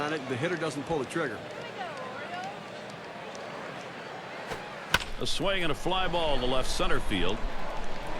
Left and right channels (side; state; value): both; identical; correlation 1.00